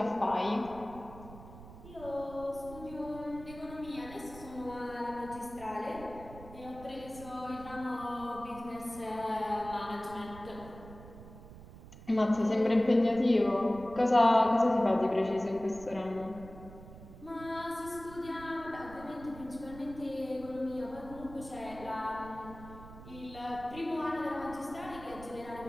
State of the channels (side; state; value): right; noise; rumble, 16 dB below the sound